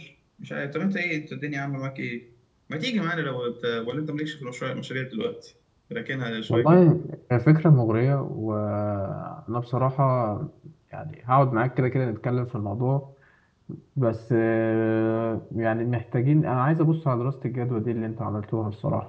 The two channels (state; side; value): identical; both; correlation 1.00